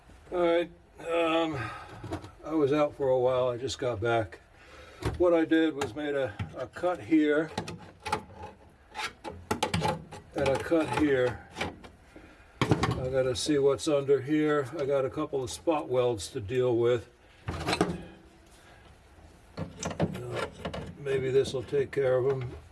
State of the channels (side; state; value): both; identical; correlation 1.00